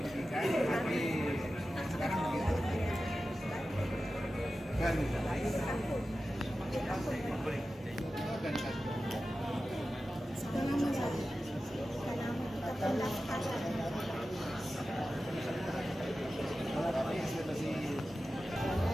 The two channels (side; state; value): both; normal; correlation 0.94